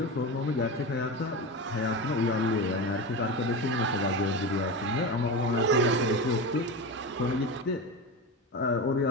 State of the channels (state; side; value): normal; both; correlation 0.23